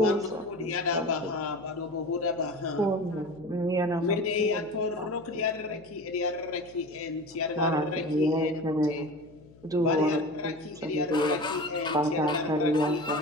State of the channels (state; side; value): noise; left; hum, 24 dB below the sound